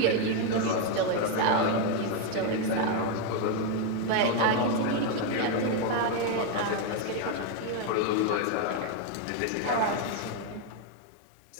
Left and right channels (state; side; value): different; both; correlation 0.01